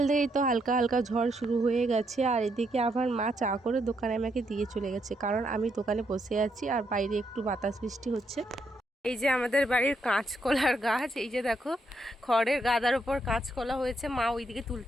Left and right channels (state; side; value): normal; both; correlation 0.77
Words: থেকেই তো হালকা হালকা ঝড় শুরু হয়ে গেছে, আর এদিকে আবার মা চা করে দোকানে আমাকে দিয়ে চলে গেছে, কারণ আমি দোকানে বসে আছি আর বাইরে একটু বাতাস বৃষ্টি হচ্ছে। এই যে আমাদের বাড়ির কাঁচকলার গাছ, এই যে দেখো খড়ের গাদার উপর কাঁচকলা হয়েছে, মা ওইদিকে